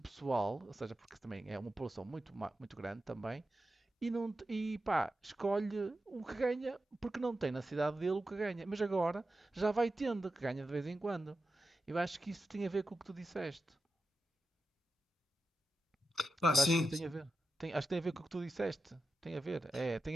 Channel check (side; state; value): both; normal; correlation 0.90